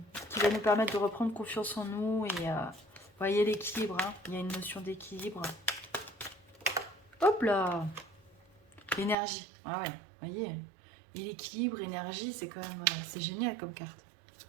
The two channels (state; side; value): drops out; left; at 9.2 s